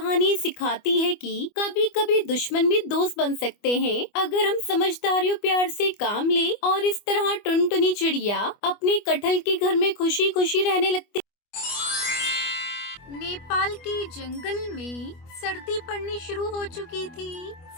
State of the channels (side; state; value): right; late; 25 ms